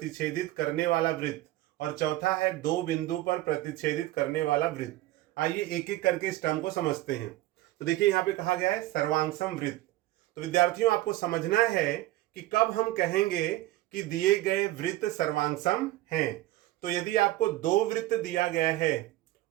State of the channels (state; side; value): quieter; left; 16.5 dB